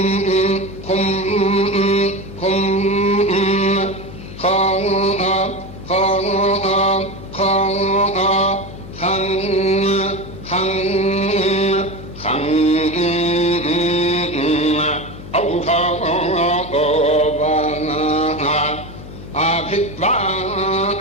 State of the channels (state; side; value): noise; left; hum, 14 dB below the sound